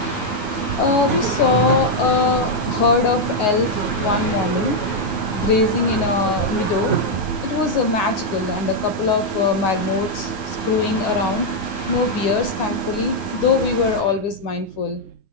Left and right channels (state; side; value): late; right; 9.5 ms